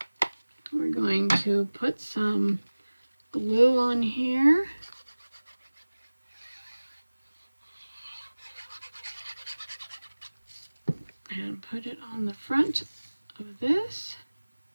We're going to put some glue on here. And put it on the front of this.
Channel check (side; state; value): both; inverted; correlation -1.00